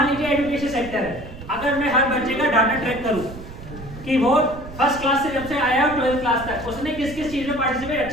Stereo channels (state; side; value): noise; right; rumble, 14 dB below the sound